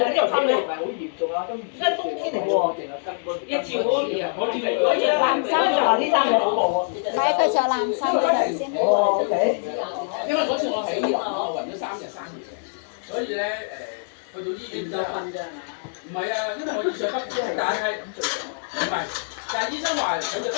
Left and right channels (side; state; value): right; silent; 62 dB below the other